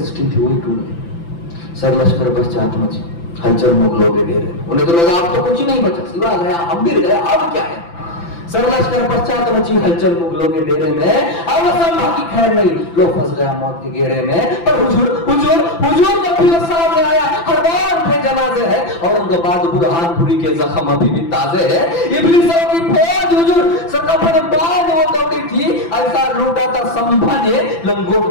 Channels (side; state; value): right; late; 5.9 ms